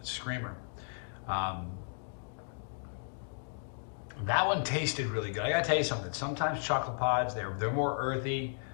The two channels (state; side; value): silent; right; digital silence